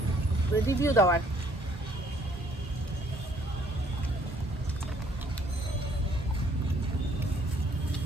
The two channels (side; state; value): both; normal; correlation 0.63